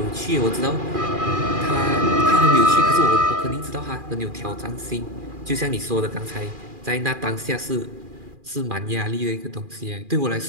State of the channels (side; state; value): left; late; 2.4 ms